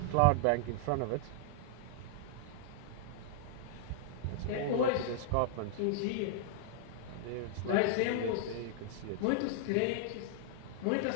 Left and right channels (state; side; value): different; both; correlation -0.01